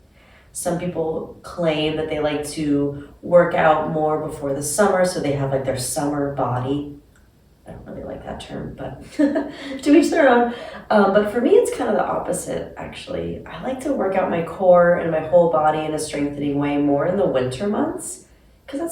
Some people claim that they like to work out more before the summer, so they have like their summer body. I don't really like that term, but to each their own. But for me, it's kind of the opposite, actually. I like to work out my core and my whole body in a strengthening way more in the winter months, because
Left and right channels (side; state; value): both; identical; correlation 1.00